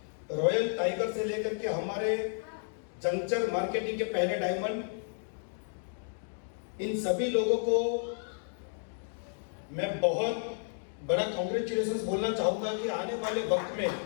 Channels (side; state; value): right; silent; digital silence